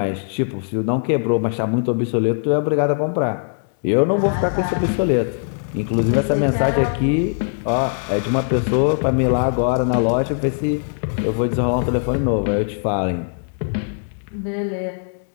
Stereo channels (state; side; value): silent; right; digital silence